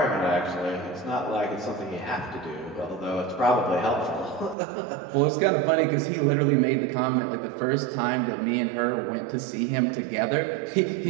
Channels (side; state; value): left; drops out; at 4.5 s